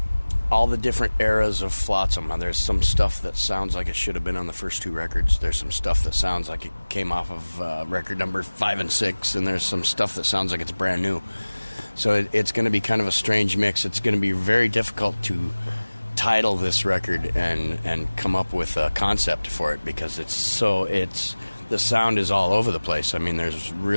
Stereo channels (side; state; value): both; inverted; correlation -1.00